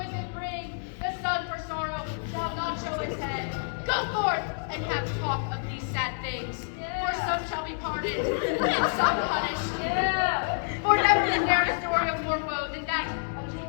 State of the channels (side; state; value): right; silent; digital silence